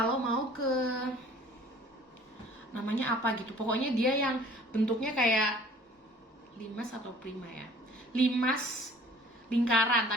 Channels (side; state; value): both; normal; correlation 0.52